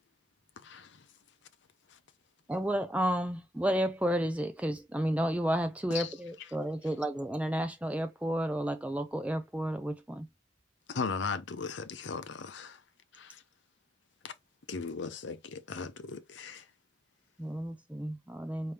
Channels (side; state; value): both; normal; correlation 0.78